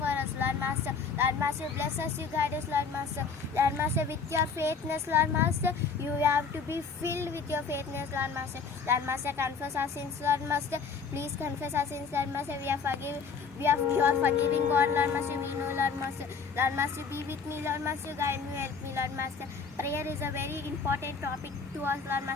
for us, Lord Master. Lord Master, bless us, you guide us, Lord Master. Lord Master, with your faithfulness, Lord Master, you have to be filled with your faithfulness, Lord Master. Lord Master, confess our sins, Lord Master. Please confess our sins, Lord Master. You are forgiving God, Lord Master. We know, Lord Master. Lord Master, be with me, Lord Master. Guide me, help me, Lord Master. Prayer is a very important topic to us, Lord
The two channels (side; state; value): right; quieter; 5.4 dB